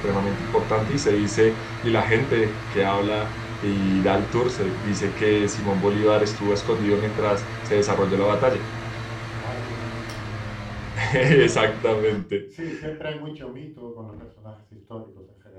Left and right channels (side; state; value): both; identical; correlation 1.00